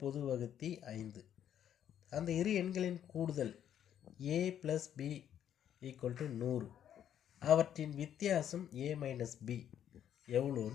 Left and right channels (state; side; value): quieter; right; 10.0 dB